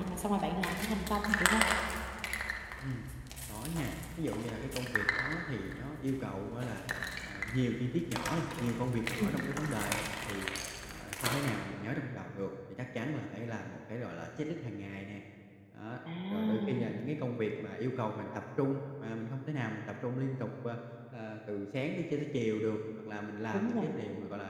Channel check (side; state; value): both; identical; correlation 1.00